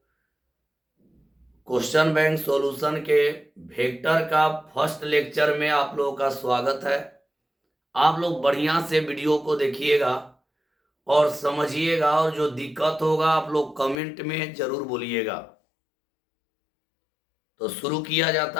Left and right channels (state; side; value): drops out; right; at 14.0 s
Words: क्वेश्चन बैंक सॉल्यूशन के वेक्टर का फर्स्ट लेक्चर में आप लोगों का स्वागत है। आप लोग बढ़िया से वीडियो को देखिएगा और समझिएगा, और जो दिक्कत होगा आप लोग कमेंट में जरूर बोलिएगा। तो शुरू किया